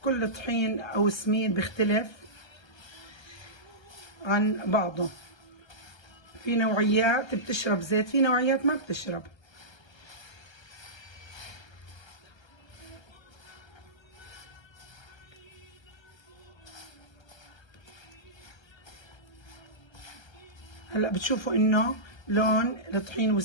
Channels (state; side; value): late; right; 1.3 ms